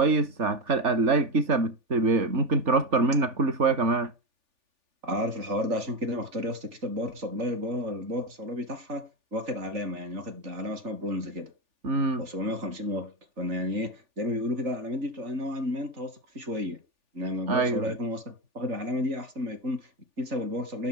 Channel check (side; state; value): left; late; 3.4 ms